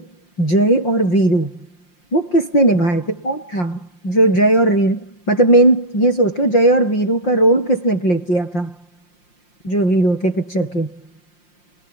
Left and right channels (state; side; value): late; right; 5.7 ms